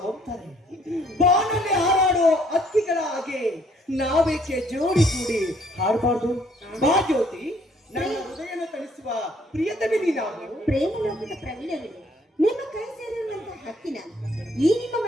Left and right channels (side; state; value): both; normal; correlation 0.63